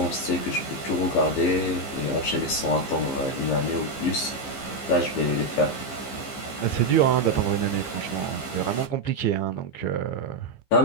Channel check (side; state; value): right; late; 15 ms